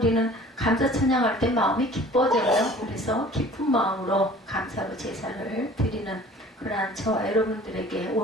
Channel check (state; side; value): normal; both; correlation 0.48